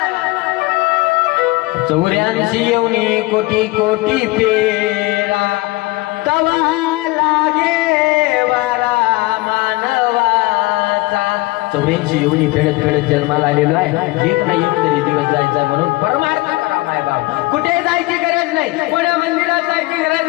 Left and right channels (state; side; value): quieter; right; 21.4 dB